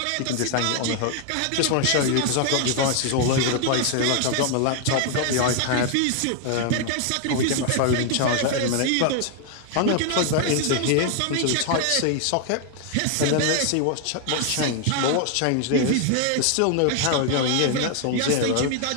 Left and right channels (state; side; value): different; both; correlation 0.00